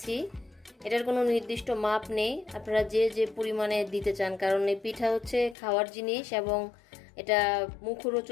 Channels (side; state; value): right; drops out; at 5.6 s